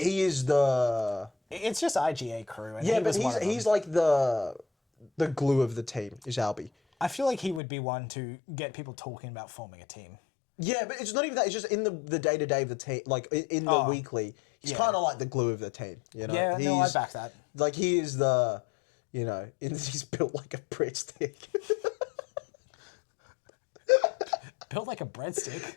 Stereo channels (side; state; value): right; drops out; at 7.6 s